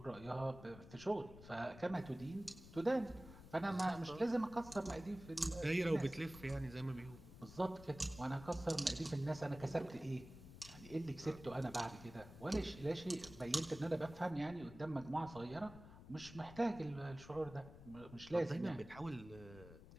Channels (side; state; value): left; noise; rumble, 16 dB below the sound